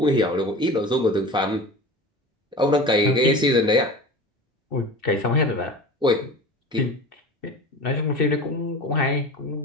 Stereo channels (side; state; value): both; normal; correlation 0.34